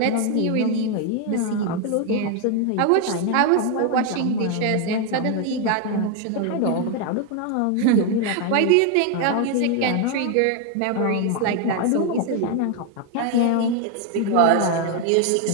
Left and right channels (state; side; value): different; both; correlation 0.01